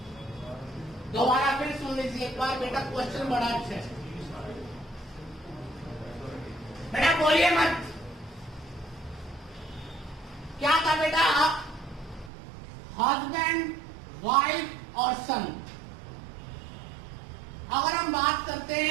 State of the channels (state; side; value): drops out; left; at 12.3 s